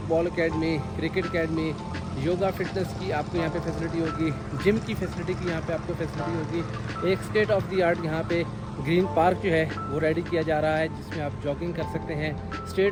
academy, cricket academy, yoga fitness की आपको यहाँ पे फैसिलिटी होगी, जिम की फैसिलिटी की यहाँ पे आपको फैसिलिटी होगी। एक स्टेट ऑफ द आर्ट यहाँ पे ग्रीन पार्क जो है वो रेडी किया जा रहा है, जिसमें आप जॉगिंग कर सकते हैं।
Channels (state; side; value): identical; both; correlation 1.00